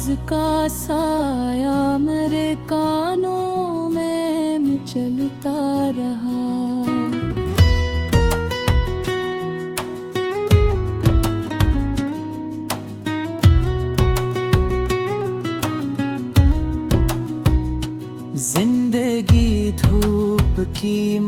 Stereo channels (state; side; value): identical; both; correlation 1.00